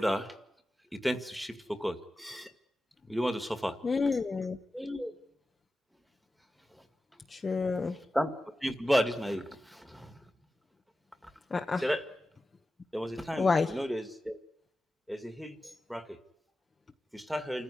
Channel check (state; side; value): normal; both; correlation 0.94